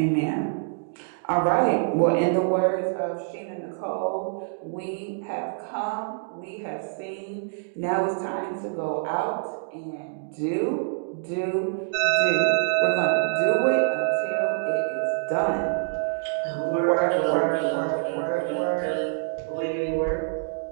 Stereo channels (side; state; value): left; silent; digital silence